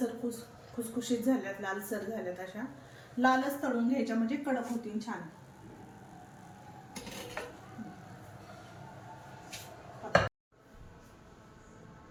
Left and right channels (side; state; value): both; identical; correlation 1.00